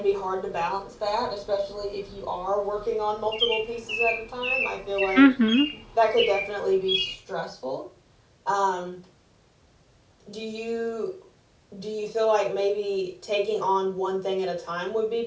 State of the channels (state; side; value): identical; both; correlation 1.00